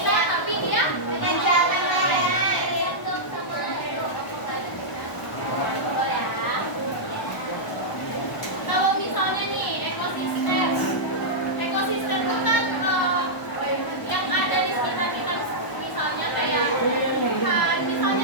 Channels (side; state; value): right; late; 1.0 ms